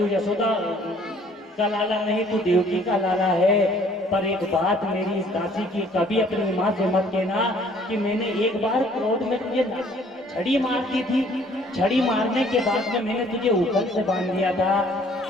यशोदा का लाला नहीं, तू देवकी का लाला है। पर एक बात मेरी इस दासी की, कभी अपनी माँ से मत कहना कि मैंने एक बार क्रोध में तुझे छड़ी मार दी थी, छड़ी मारने के बाद में मैंने तुझे ऊपर से बांध दिया था।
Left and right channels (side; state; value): both; normal; correlation 0.58